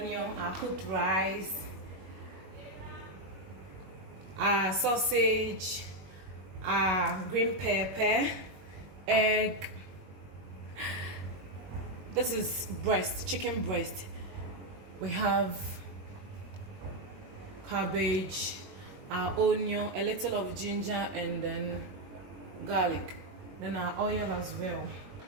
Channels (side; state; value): left; late; 21 ms